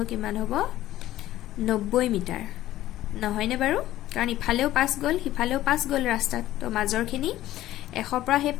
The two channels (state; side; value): quieter; right; 14.5 dB